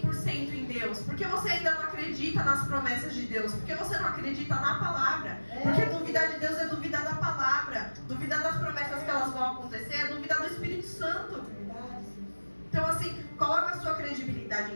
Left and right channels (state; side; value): inverted; both; correlation -1.00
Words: em Deus? Por que você ainda não acredita nas promessas de Deus? Por que você não acredita na palavra? Porque duvidar de Deus é duvidar da palavra. Duvidar das promessas que elas vão acontecer é duvidar do Espírito Santo. Então assim, coloca a sua credibilidade